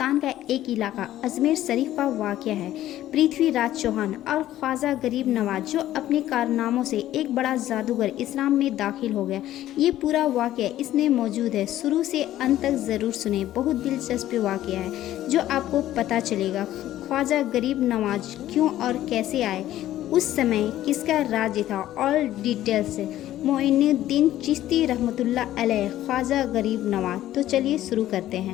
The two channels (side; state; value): right; quieter; 13.5 dB